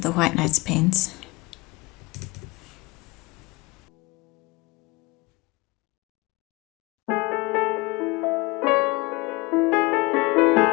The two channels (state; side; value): quieter; right; 24.1 dB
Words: the White Nights paints.